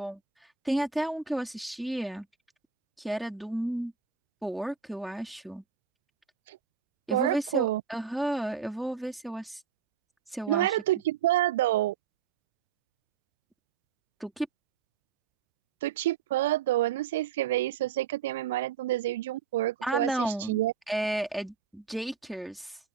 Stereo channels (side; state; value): left; quieter; 7.0 dB